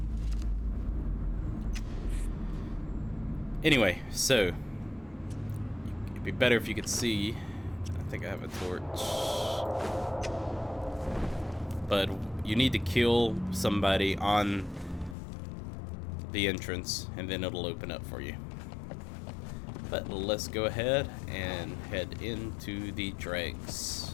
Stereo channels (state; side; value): drops out; right; at 15.2 s